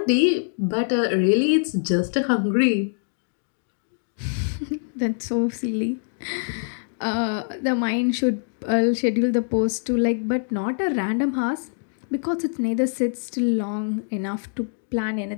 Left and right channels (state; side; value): silent; right; digital silence